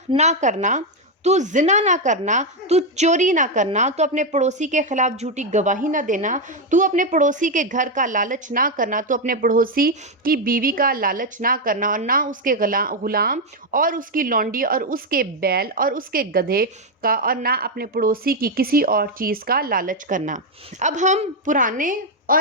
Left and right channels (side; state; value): both; normal; correlation 0.04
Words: نہ کرنا، تو زنا نہ کرنا، تو چوری نہ کرنا، تو اپنے پڑوسی کے خلاف جھوٹی گواہی نہ دینا، تو اپنے پڑوسی کے گھر کا لالچ نہ کرنا، تو اپنے پڑوسی کی بیوی کا لالچ نہ کرنا، اور نہ اس کے غلام اور اس کی لونڈی اور اس کے بیل اور اس کے گدھے کا، اور نہ اپنے پڑوسی کی کسی اور چیز کا لالچ کرنا۔ اب ہم پرانے